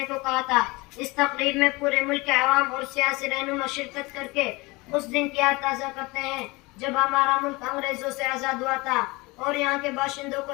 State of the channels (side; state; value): right; quieter; 24.0 dB